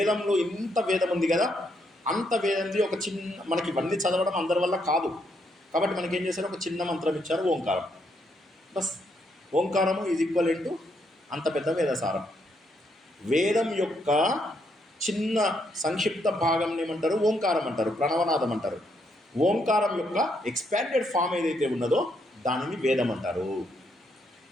ఇంత వేదం ఉంది కదా, అంత వేదంది ఒక మనకి ఇవన్నీ చదవడం అందరి వల్ల కాదు. కాబట్టి మనకి ఏం చేశారు? ఒక చిన్న మంత్రం ఇచ్చారు, ఓంకారం. బస్, ఓంకారము ఈజ్ ఈక్వల్ టు అంత పెద్ద వేదసారం. వేదం యొక్క చిన్న సంక్షిప్త భాగం ఏమంటారు? ఓంకారం అంటారు, ప్రణవనాదం అంటారు. ఓంకారం యొక్క ఎక్స్పాండెడ్ ఫామ్ ఏదైతే ఉన్నదో దానిని వేదం అంటారు.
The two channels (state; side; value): normal; both; correlation 0.76